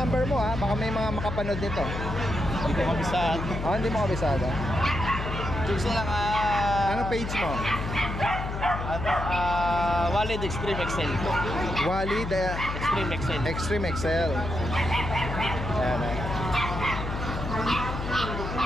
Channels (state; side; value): noise; left; hum, 5 dB below the sound